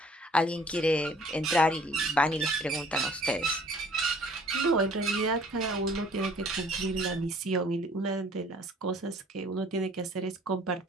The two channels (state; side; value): normal; both; correlation 0.55